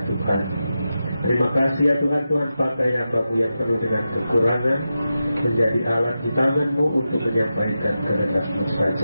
Tuhan. Terima kasih ya Tuhan, Tuhan pakai hamba-Mu yang penuh dengan kekurangan menjadi alat di tangan-Mu untuk menyampaikan kehendak-Mu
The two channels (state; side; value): inverted; both; correlation -0.90